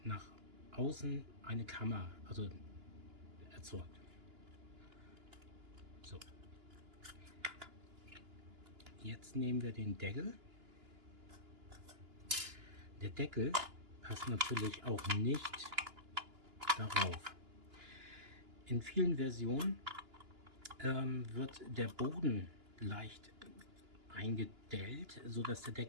nach außen eine Kammer, also erzeugt. So. Jetzt nehmen wir den Deckel. Der Deckel passt natürlich auch nicht darauf. In vielen Versionen wird der Boden leicht eingedellt, sodass der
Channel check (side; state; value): left; late; 2.9 ms